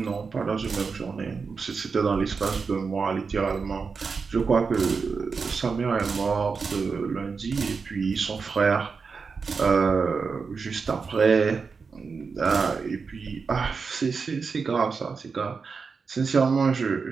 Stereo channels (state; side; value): quieter; left; 5.1 dB